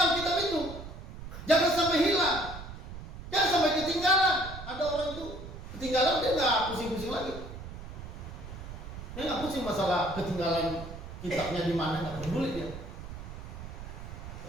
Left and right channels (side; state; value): right; noise; rumble, 11 dB below the sound